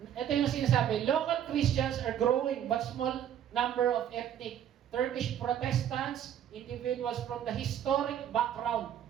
Ito yung sinasabi, local Christians are growing but small number of ethnic Turkish Protestants, individuals from the historic background.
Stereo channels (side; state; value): left; quieter; 10.0 dB